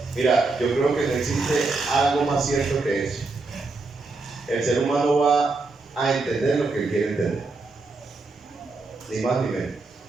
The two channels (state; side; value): quieter; left; 3.7 dB